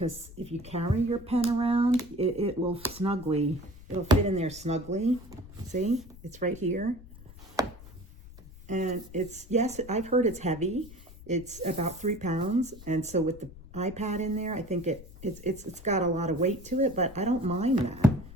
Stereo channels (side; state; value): left; noise; rumble, 18 dB below the sound